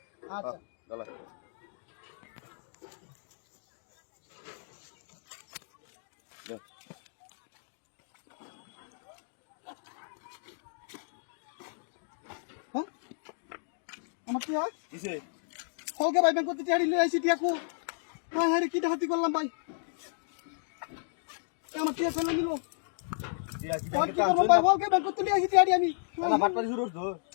আচ্ছা গলা হ্যাঁ আমার কি হয় কিসে হলকে ভাই ব্যাংক করতে টিয়াড়ি লই আইছি টিয়াকু হ্যাঁ হ্যাঁ কি হাতি করলাম ভাই আমার টিয়া ফেলে নিল ভাই হলকে ব্যাংক করতে লই আইছি টিয়াড়ি আমি না ফাটপাড়ি শুরু করছো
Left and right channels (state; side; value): silent; right; digital silence